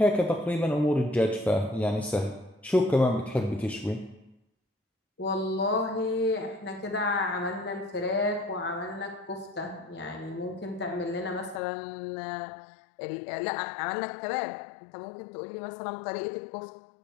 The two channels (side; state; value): right; drops out; at 11.6 s